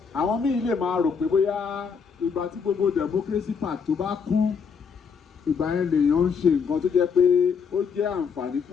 àwọn míì lè máa rò pé bóyá ìgbà tí gbogbo democracy park tó bá kú, ìgbà yẹn lèèyàn ń ṣe nǹkan tó jẹ́ pé ó jẹ́ àǹfààní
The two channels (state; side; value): quieter; right; 6.1 dB